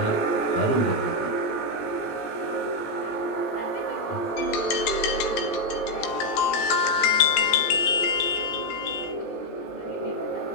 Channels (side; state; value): right; late; 17 ms